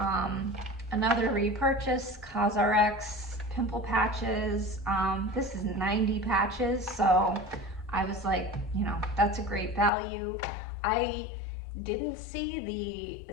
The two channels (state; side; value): drops out; right; at 9.9 s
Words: another repurchase, Cosrx pimple patches. This is 90 patches, so I was like, you know, that's a great value. I didn't see